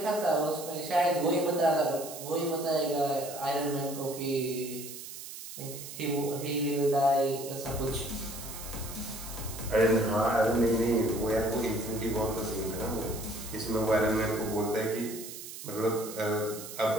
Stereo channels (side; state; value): right; noise; hiss, 11 dB below the sound